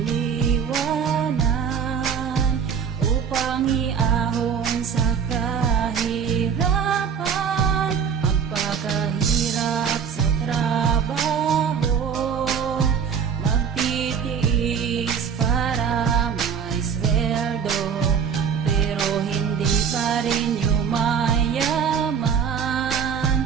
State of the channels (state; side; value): quieter; left; 7.1 dB